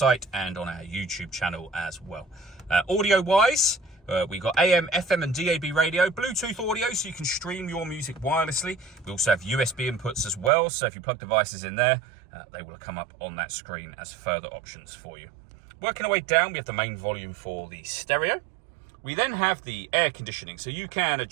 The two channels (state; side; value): drops out; left; at 10.5 s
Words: and on our YouTube channel as well. Audio-wise, we've got AM, FM and DAB radio, Bluetooth audio so you can stream your music wirelessly. We also have USB inputs as well, so if you plug devices in there, they will come up on that screen as further options for you. Working our way down, we have the main volume for the stereo. We then have the air conditioning, so you can